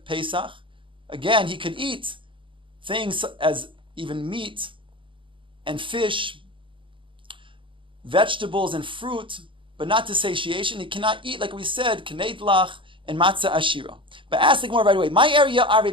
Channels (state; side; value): late; left; 0.25 ms